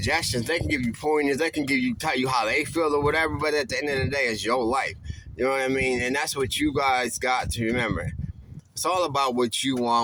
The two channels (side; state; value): both; identical; correlation 1.00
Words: they can give you pointers, they can tell you how they feel or whatever, but at the end of the day, it's your life. You know what I mean? And that's what you guys got to remember. It's all about what you